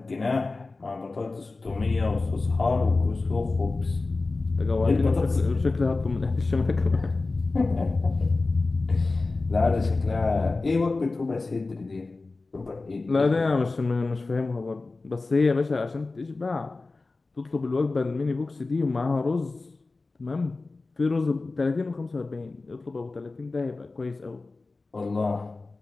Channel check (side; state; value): right; quieter; 3.5 dB